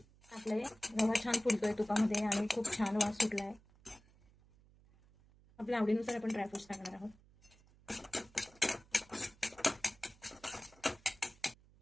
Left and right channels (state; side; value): noise; right; hum, 27 dB below the sound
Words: टाकलंय. रवा छान फुलतोय तुपामध्ये आणि खूप छान वास सुटलाय. आपल्या आवडीनुसार आपण ड्रायफ्रुट्स टाकणार आहोत.